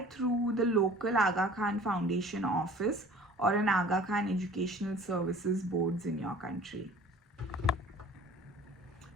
through the local Aga Khan Foundation office or an Aga Khan Educational Services boards in your country.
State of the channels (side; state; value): both; normal; correlation 0.47